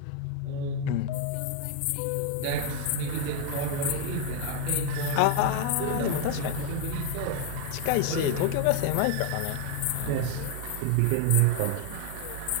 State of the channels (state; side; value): different; both; correlation 0.01